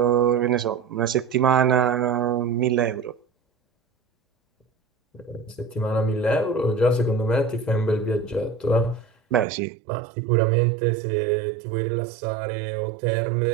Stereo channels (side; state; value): left; drops out; at 9.5 s